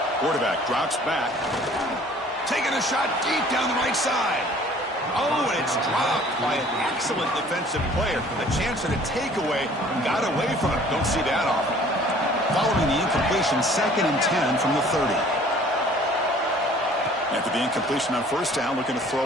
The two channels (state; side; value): normal; both; correlation 0.52